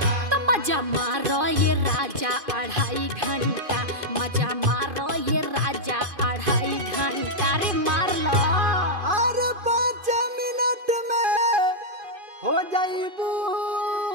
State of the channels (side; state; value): left; late; 2.5 ms